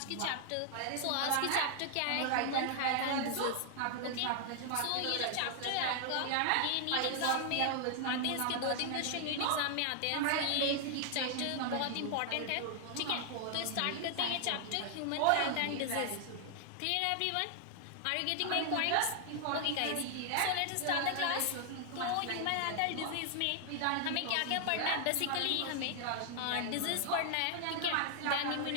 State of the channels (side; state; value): both; different; correlation 0.00